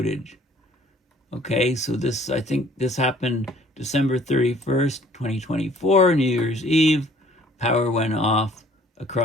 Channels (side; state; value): both; normal; correlation 0.56